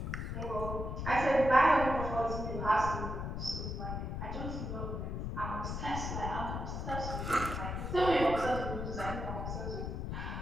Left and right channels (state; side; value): noise; left; rumble, 4 dB below the sound